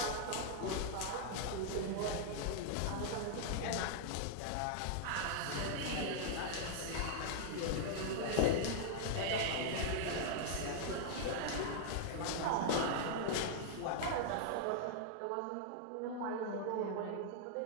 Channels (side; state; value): both; different; correlation -0.01